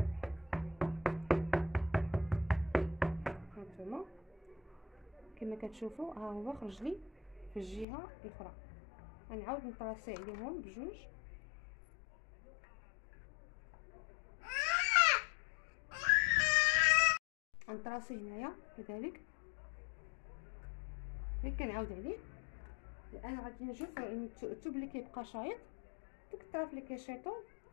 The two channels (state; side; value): drops out; right; at 7.9 s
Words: هانتوما كما كتشوفوا ها هو خرج لي في الجهه الاخرى. غنعاود نطراسي عليهم بجوج، غنطراسي هنايا كذلك غير كنعاود عليه. الان غادي نشوف الثوب اللي كيبقى شايط ديك الطرف اللي كيشيطو